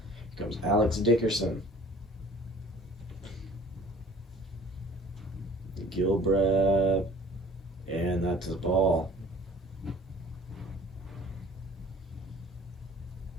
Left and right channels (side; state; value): both; normal; correlation 0.49